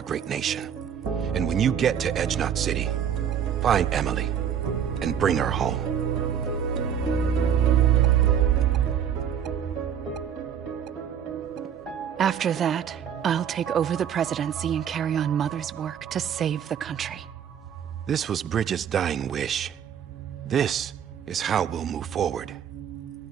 great nation. And when you get to Edge Knot City, find Emily and bring her home. After that, I'll take over the presidency and carry on Mother's work to save the country. This was Bridget's dying wish. This is how we'll move forward.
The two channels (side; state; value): left; quieter; 8.6 dB